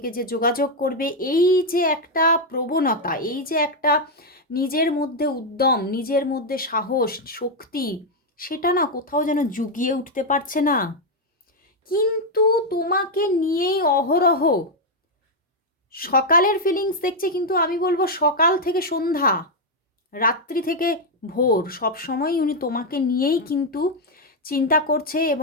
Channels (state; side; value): normal; both; correlation 0.02